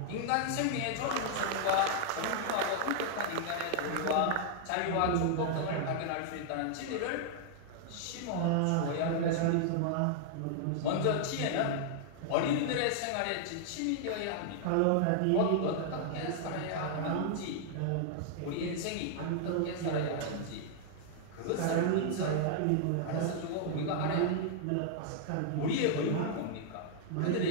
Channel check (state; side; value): different; both; correlation -0.01